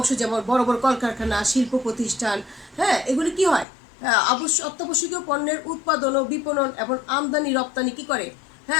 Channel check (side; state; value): right; drops out; at 3.7 s